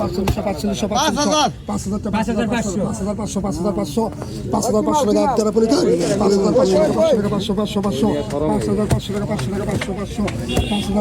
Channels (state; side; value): identical; both; correlation 1.00